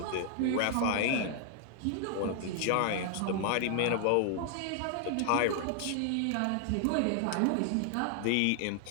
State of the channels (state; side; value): different; both; correlation 0.00